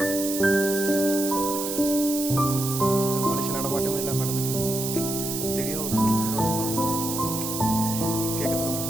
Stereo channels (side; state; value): right; noise; hiss, 4 dB below the sound